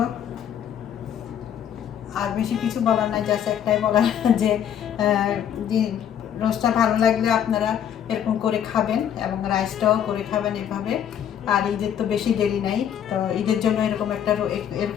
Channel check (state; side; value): quieter; right; 9.3 dB